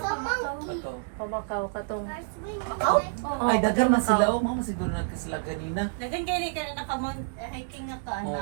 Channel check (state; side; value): silent; left; digital silence